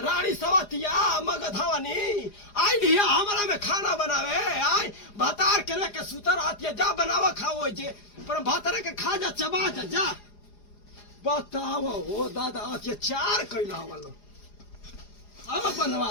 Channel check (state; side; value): late; right; 4.9 ms